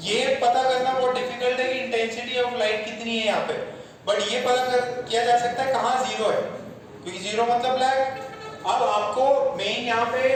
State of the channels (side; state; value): both; identical; correlation 1.00